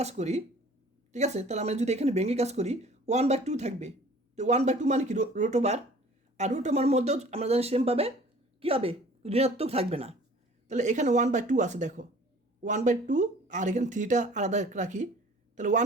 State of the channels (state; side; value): normal; both; correlation 0.50